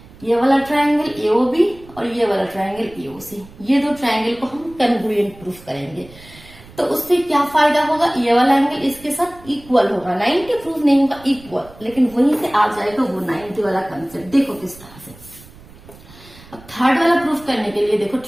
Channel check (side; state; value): right; noise; rumble, 22 dB below the sound